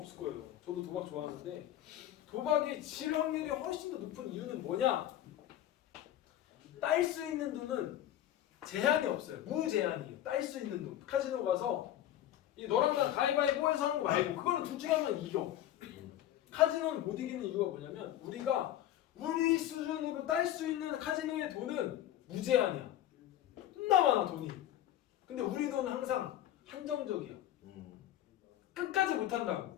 거예요. 저도 도박 좋아하는데 도박이 질 확률이 훨씬 더 높은 이유는 뭐냐? 딸 수 있는 돈은 제한이 없어요. 무제한이에요. 딸 수 있는 돈. 카지노 가서 너랑 나 가위바위보해서 하는 거 말고 그거는 둘 중에 하면 이겨. 카지노는 못 이기는 이유가 뭐냐면 우리가 우리 수준으로 딸 수 있는 카지노의 돈은 무제한이야. 존나 많아 돈이. 근데 우리 돈은 항상 한정적이야. 끝까지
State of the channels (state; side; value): quieter; right; 12.3 dB